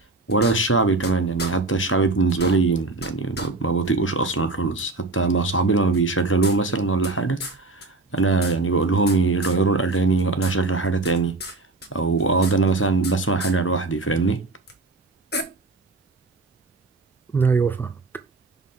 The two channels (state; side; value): quieter; left; 3.3 dB